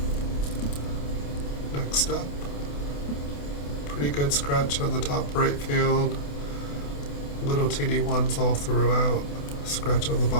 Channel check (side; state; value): right; late; 28 ms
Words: Next up, pretty good scratch on the top right field. Little teeny ones all throughout. Scratch on the